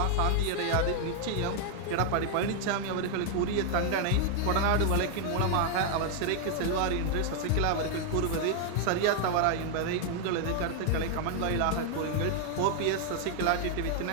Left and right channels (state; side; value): different; both; correlation 0.00